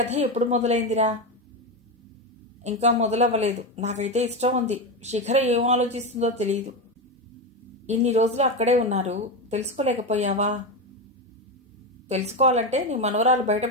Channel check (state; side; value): normal; both; correlation 0.14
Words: ఎప్పుడు మొదలైందిరా? ఇంకా మొదలవ్వలేదు. నాకైతే ఇష్టం ఉంది. శిఖర ఏం ఆలోచిస్తుందో తెలియదు. ఇన్ని రోజులు అక్కడే ఉన్నారు, తెలుసుకోలేకపోయావా? తెలుసుకోవాలంటే నీ మనవరాలు